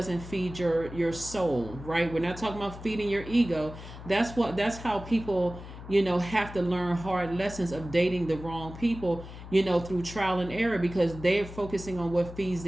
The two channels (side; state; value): left; noise; hum, 13 dB below the sound